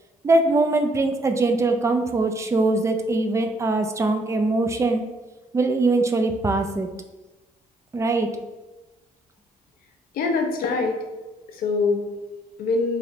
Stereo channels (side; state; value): both; normal; correlation 0.68